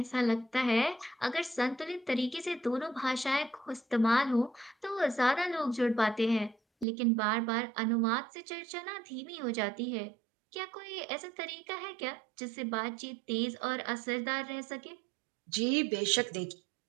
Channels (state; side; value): drops out; left; at 6.9 s